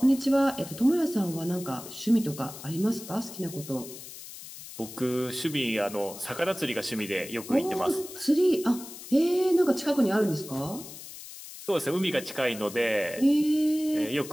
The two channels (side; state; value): left; noise; hiss, 14 dB below the sound